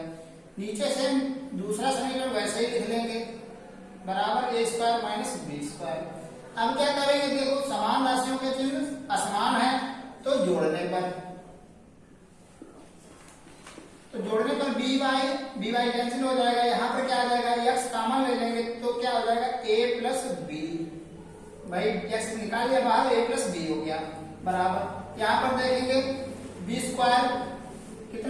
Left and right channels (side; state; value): both; identical; correlation 1.00